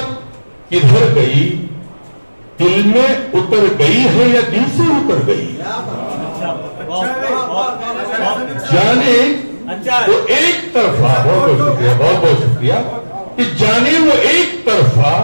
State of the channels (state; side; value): inverted; both; correlation -1.00